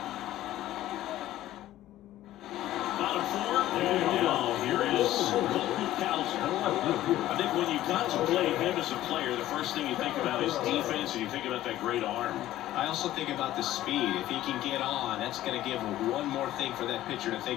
Bottom 4. And now here is I think when you contemplate him as a player, the first thing you think about is defense, and you think about that great arm. I also think about the speed. If he can get on, that's going to give him one more thing for that pitcher to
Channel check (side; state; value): right; quieter; 14.2 dB